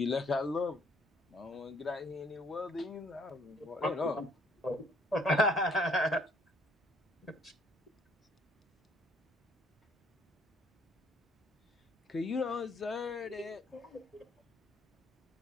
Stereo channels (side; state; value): both; normal; correlation 0.63